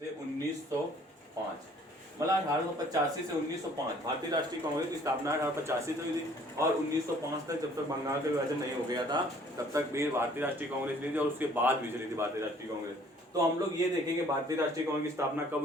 1905, मतलब 1885 से 1905 भारतीय राष्ट्रीय कांग्रेस की स्थापना 1885 से हुई थी और 1905 तक, जब तक बंगाल का विभाजन नहीं हो गया था तब तक भी भारतीय राष्ट्रीय कांग्रेस चली थी और उसके बाद भी चली थी भारतीय राष्ट्रीय कांग्रेस। तो हम लोग ये देखेंगे भारतीय राष्ट्रीय कांग्रेस की स्थापना कब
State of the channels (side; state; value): both; normal; correlation 0.57